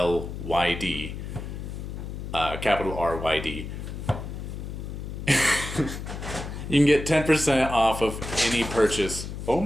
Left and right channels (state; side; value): noise; left; hum, 7 dB below the sound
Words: capital RYD. You can get 10% off of any purchase. Oh